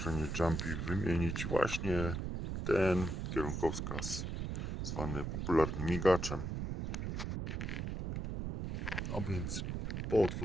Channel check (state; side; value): noise; right; rumble, 3 dB below the sound